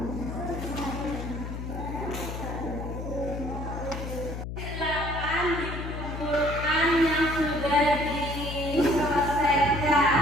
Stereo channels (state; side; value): noise; left; hum, 6 dB below the sound